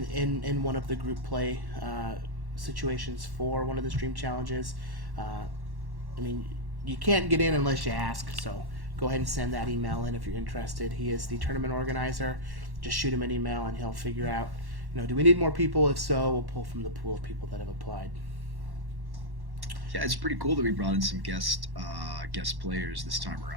one of the group play situations for one of the stream challenges. I mean, you can't get in unless you ask, so go ahead and send that email in if you're interested. He is the tournament organizer. Just shoot him an email and he'll figure out, do we need more people? If so, we'll pull from the pool of people that have applied. Yeah, it's pretty cool that we brought in some guest players this time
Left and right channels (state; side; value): late; left; 1.1 ms